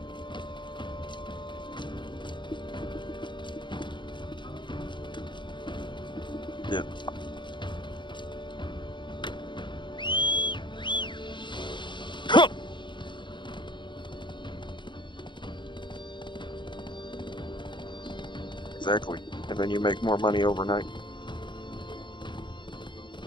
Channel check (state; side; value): late; right; 0.23 ms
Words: Yeah. Exactly. And then you make more money overnight.